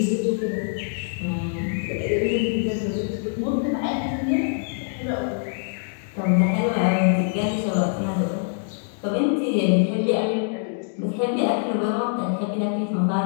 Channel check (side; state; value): right; silent; digital silence